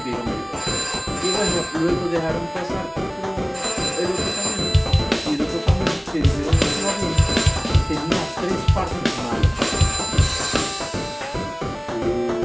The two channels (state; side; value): identical; both; correlation 1.00